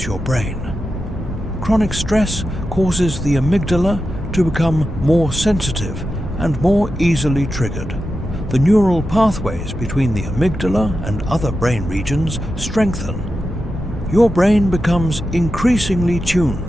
your brain. Chronic stress causes the amygdala to become more sensitive and more easily triggered. The neural pathways between the amygdala and other brain regions strengthen. Your brain becomes increasingly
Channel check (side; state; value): both; normal; correlation 0.90